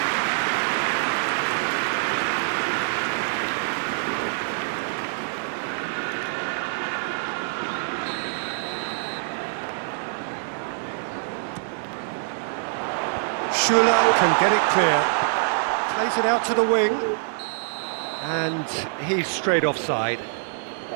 Schuller can get it clear. Plays it out to the wing. And he's straight offside.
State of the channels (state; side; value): silent; left; 62 dB below the other